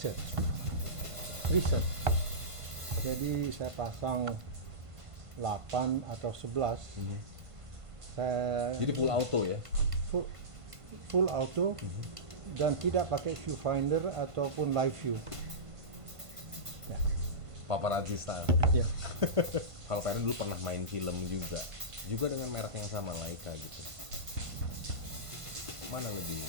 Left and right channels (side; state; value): left; late; 1.5 ms